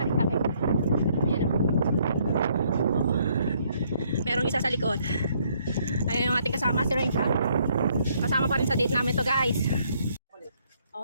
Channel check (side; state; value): both; inverted; correlation -0.68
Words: rin kami. Ayan o. Merong isa sa likod. Ayan yung ating kasama, si Renka. Kasama pa rin sa date namin to guys.